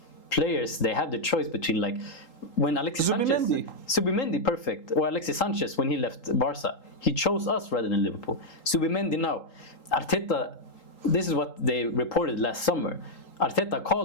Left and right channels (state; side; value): late; right; 3.8 ms